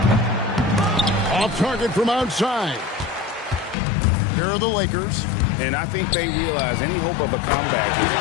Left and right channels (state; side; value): drops out; right; at 3.8 s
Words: Off target from outside. Here are the Lakers. And I think they realize any hope of a comeback is